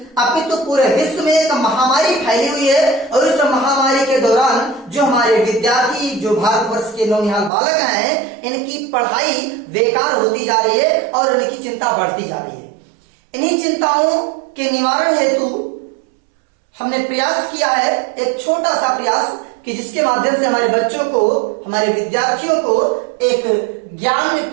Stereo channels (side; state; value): left; drops out; at 7.5 s